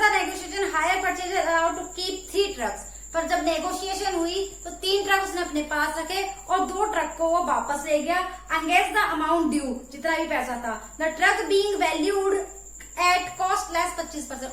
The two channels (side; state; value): both; identical; correlation 1.00